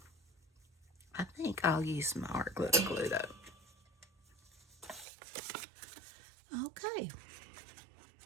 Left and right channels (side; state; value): left; drops out; at 5.1 s